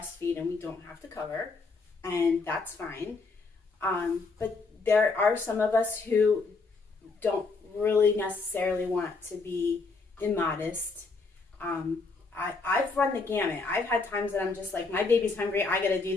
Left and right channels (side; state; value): right; quieter; 4.0 dB